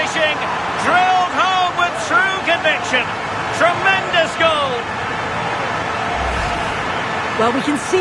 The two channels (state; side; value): identical; both; correlation 1.00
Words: Drilled home with true conviction. Tremendous goal. Well, we can